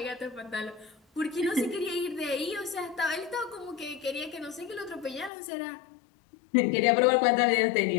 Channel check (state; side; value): drops out; right; at 5.3 s